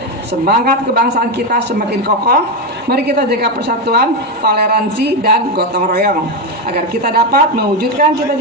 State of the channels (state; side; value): normal; both; correlation 0.10